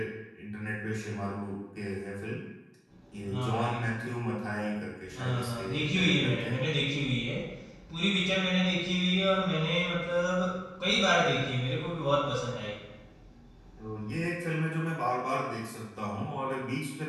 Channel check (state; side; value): identical; both; correlation 1.00